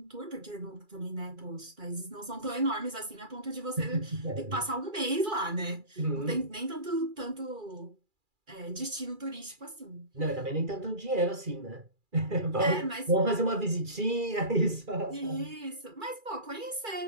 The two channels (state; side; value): late; left; 2.4 ms